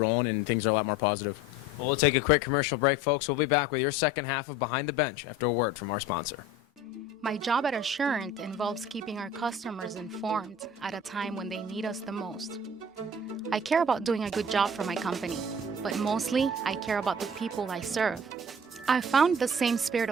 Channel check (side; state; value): both; normal; correlation 0.43